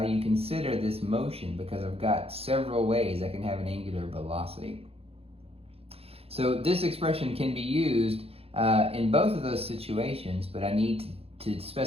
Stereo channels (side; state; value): left; late; 0.28 ms